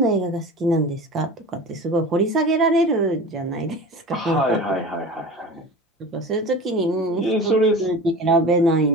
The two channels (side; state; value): both; normal; correlation 0.34